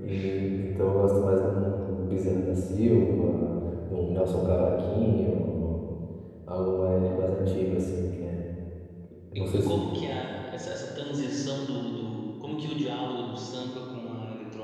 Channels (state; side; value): identical; both; correlation 1.00